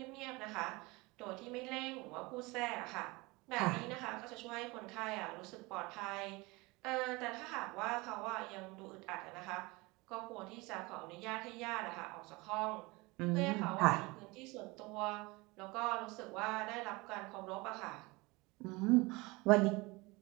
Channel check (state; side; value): quieter; left; 24.1 dB